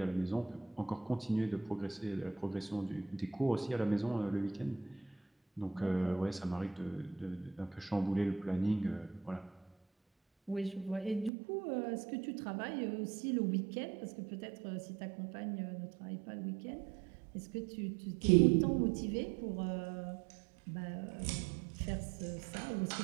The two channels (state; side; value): drops out; left; at 11.3 s